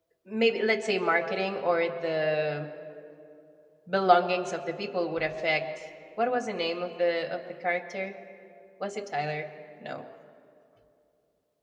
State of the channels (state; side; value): identical; both; correlation 1.00